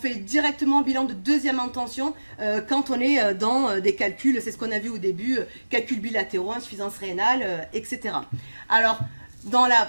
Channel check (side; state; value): both; inverted; correlation -1.00